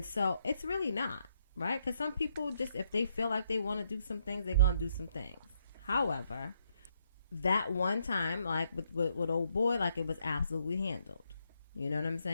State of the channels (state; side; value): inverted; both; correlation -0.74